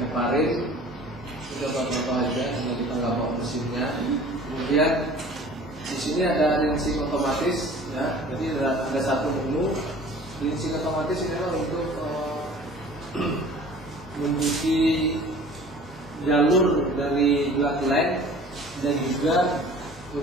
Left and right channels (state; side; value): normal; both; correlation 0.46